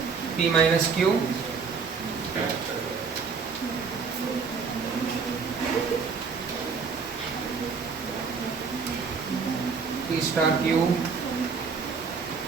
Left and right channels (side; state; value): left; quieter; 5.4 dB